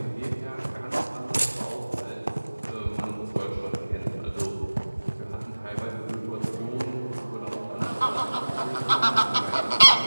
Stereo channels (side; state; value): both; inverted; correlation -1.00